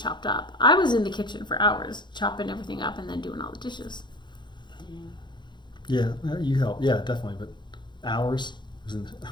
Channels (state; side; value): late; right; 0.22 ms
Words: up, I was in the kitchen for hours, chopping everything up and then doing all the dishes. Yeah, you help. Yeah, definitely. But hours isn't...